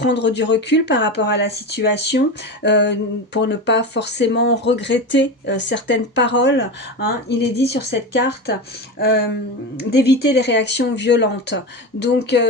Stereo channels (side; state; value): both; normal; correlation 0.23